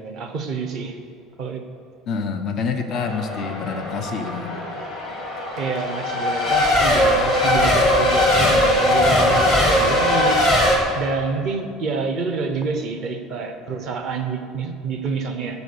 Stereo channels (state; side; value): normal; both; correlation 0.46